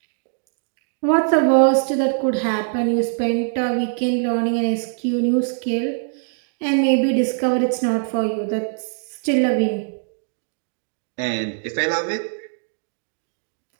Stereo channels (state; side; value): silent; left; digital silence